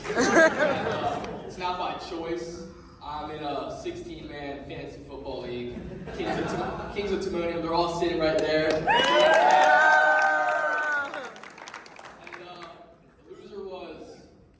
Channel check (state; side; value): identical; both; correlation 1.00